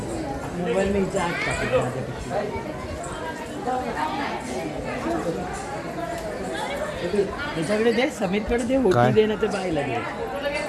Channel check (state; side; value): identical; both; correlation 1.00